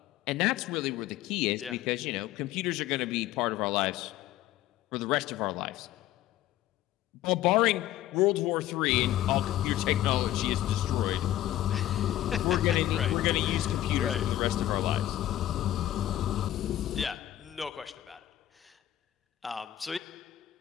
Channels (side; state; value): right; quieter; 13.4 dB